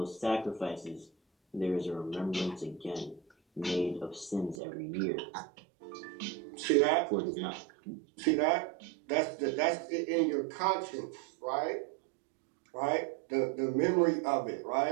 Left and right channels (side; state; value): left; drops out; at 4.6 s